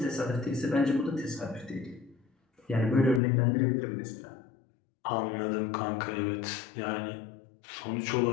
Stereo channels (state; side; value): drops out; right; at 3.2 s